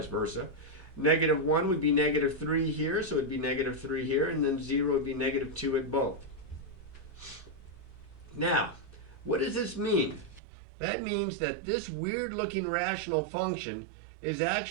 versa. Negative 1 would be negative 3 here, so it would be negative 3 here, and then 0 would be negative 2 at both. Now, what does this mean? That means that this weird-looking rational function is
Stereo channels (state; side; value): drops out; left; at 10.4 s